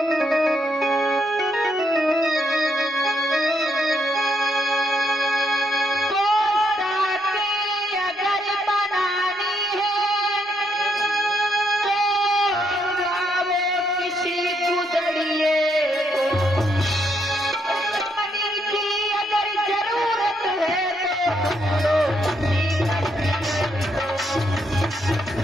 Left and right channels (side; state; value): both; normal; correlation 0.76